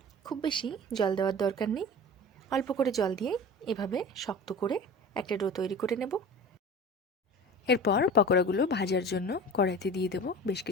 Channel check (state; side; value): normal; both; correlation 0.36